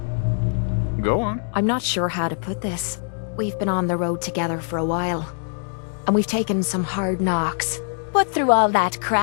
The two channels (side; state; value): right; silent; digital silence